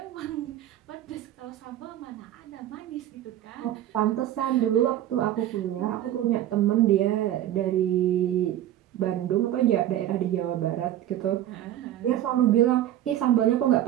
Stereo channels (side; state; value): left; quieter; 12.4 dB